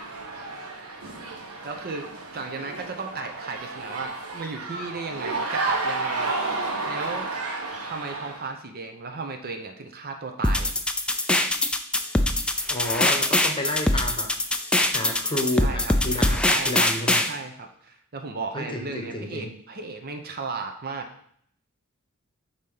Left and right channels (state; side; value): normal; both; correlation 0.20